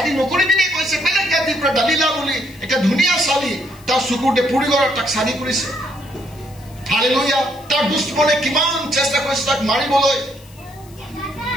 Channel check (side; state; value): left; noise; hiss, 25 dB below the sound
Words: নকৰিবি নে কৈছে বেলেগ জাতিৰ পৰা দালিলা বুলি এটা ধুনীয়া চালি তাৰ চকুতে পুৰি গ'ল তাক চালি কৰিছে হালেলুয়া তাৰ দুশ্মনে কিমান চেষ্টা কৰিছে তাক মাৰিবলৈ